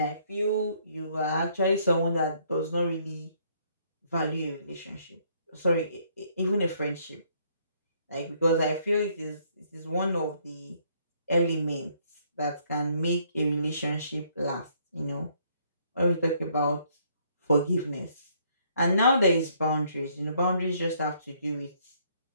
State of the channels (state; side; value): inverted; both; correlation -0.67